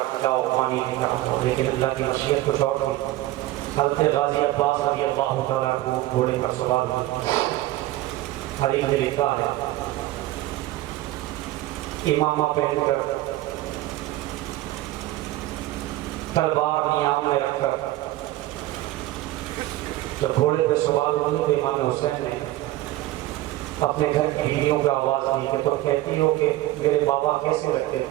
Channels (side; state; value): left; quieter; 16.3 dB